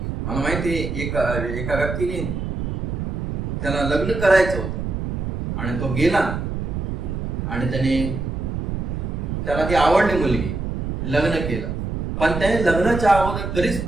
मला माहिती एका व्यक्तीने त्याला लग्न करायचं होतं आणि तो गेला आणि त्याला ती आवडली मुलगी, लग्न केलं. पण त्याने लग्नाच्या अगोदर कधीच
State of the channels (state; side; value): noise; right; rumble, 3 dB below the sound